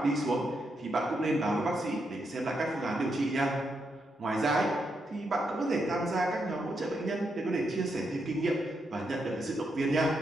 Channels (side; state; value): both; normal; correlation 0.81